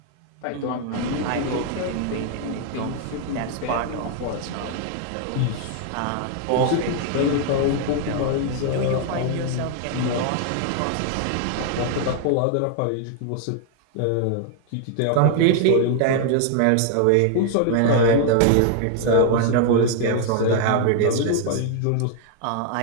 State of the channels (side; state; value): both; different; correlation 0.00